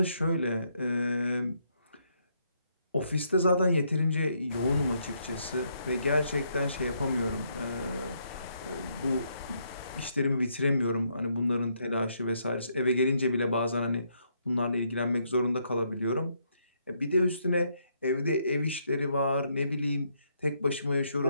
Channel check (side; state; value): both; inverted; correlation -0.75